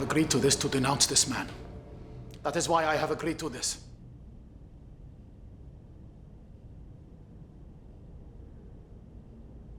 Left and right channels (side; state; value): both; identical; correlation 1.00